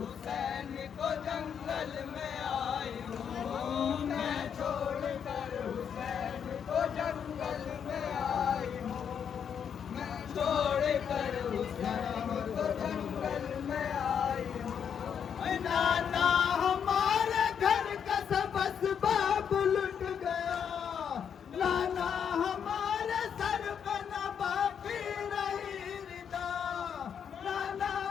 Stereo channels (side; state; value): right; quieter; 7.8 dB